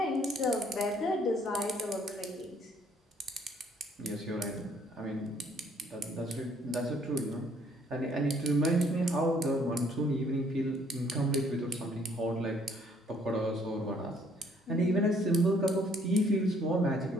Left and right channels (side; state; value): both; normal; correlation 0.63